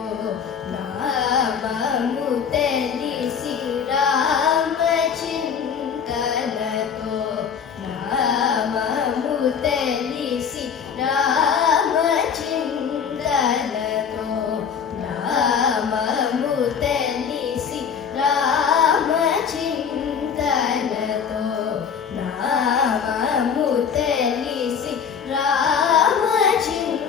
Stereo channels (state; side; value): quieter; right; 7.0 dB